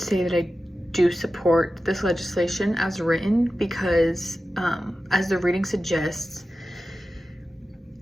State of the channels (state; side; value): normal; both; correlation 0.93